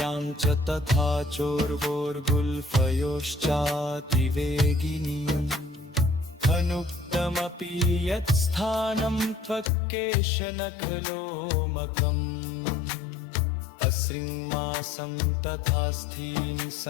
च तथा चोर्वोर्गुल्फयोश्चातिवेगिनी अनुक्तमपि यत्स्थानं त्वक्केशनखलोमकम् अश्रिङ्मासं तथा स्थीनि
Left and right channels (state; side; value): drops out; right; at 9.7 s